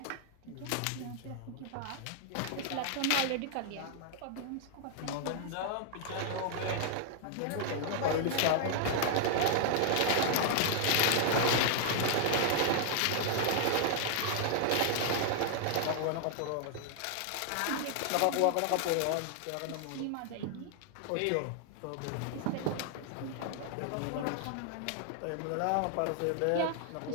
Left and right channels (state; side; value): different; both; correlation 0.00